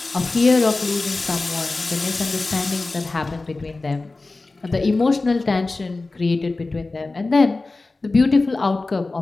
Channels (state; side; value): quieter; right; 3.4 dB